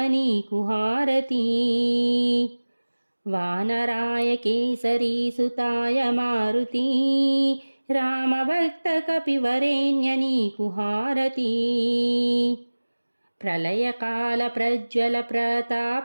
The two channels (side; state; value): both; inverted; correlation -1.00